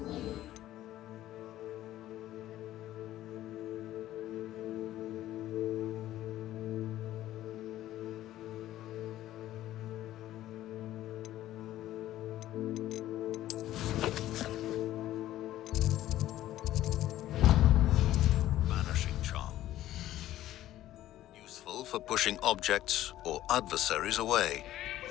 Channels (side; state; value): right; quieter; 13.8 dB